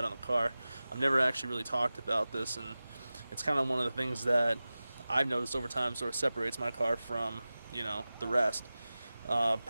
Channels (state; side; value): inverted; both; correlation -0.96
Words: on the car. I've never actually really talked about this, and it's kind of one of the things that I've noticed over time sort of separates my car from the rest.